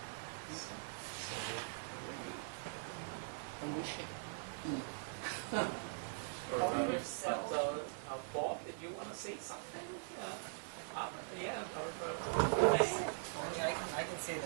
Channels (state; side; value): silent; left; digital silence